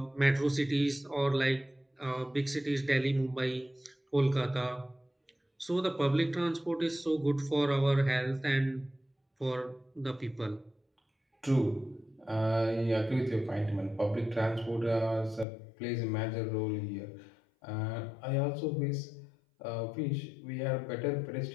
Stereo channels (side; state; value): right; drops out; at 15.5 s